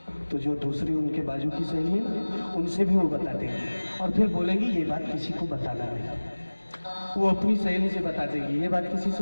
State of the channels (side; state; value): both; inverted; correlation -1.00